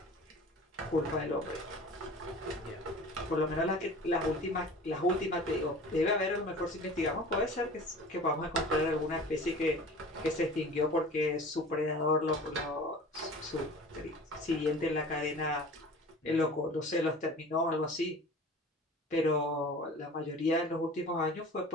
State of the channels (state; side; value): normal; both; correlation 0.40